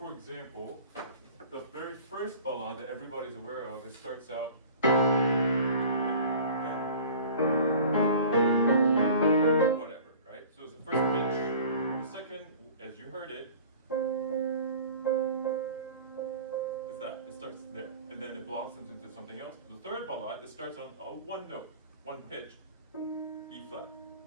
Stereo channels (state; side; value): inverted; both; correlation -0.44